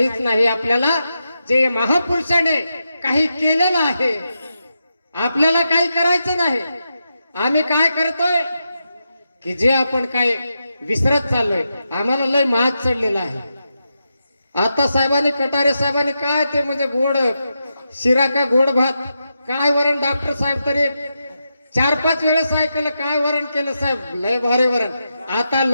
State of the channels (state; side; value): inverted; both; correlation -0.87